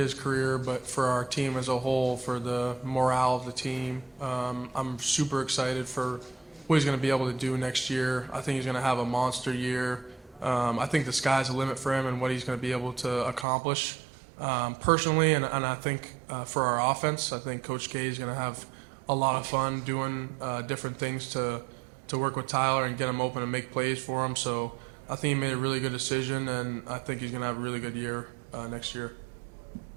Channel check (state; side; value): drops out; left; at 13.5 s